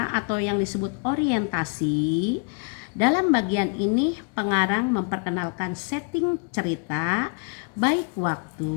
atau yang disebut orientasi. Dalam bagian ini pengarang memperkenalkan setting cerita, baik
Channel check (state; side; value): quieter; right; 37.2 dB